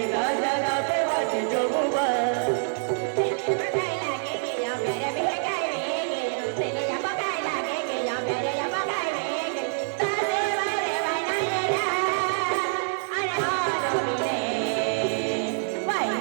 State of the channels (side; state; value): left; silent; 61 dB below the other